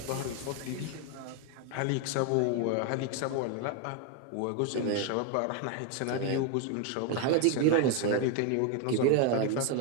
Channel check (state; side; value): different; both; correlation 0.01